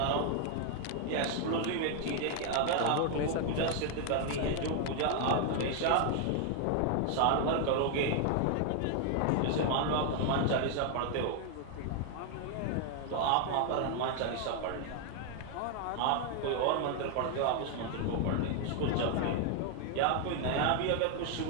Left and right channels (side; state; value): both; different; correlation 0.00